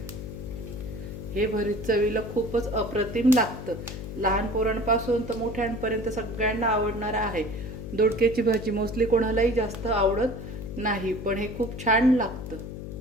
हे भरीत चवीला खूपच अप्रतिम लागतं। लहान पोरांपासून तर मोठ्यांपर्यंत सगळ्यांना आवडणार आहे। दोडक्याची भाजी मोस्टली कोणालाही जास्त आवडत नाही, पण हे खूप छान लागतं।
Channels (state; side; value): noise; left; hum, 9 dB below the sound